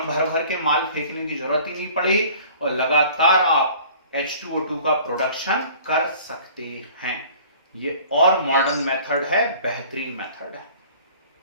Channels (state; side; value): inverted; both; correlation -0.49